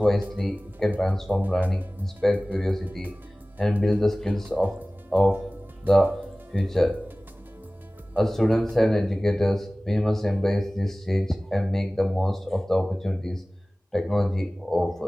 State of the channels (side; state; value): both; normal; correlation 0.98